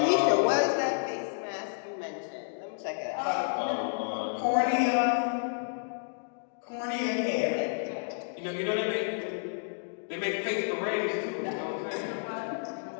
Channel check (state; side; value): silent; right; digital silence